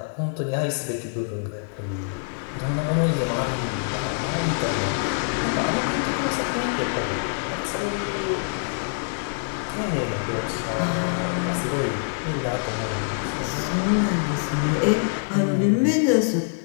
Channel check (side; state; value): right; silent; 62 dB below the other